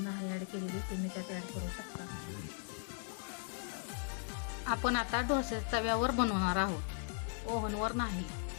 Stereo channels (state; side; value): silent; right; 52 dB below the other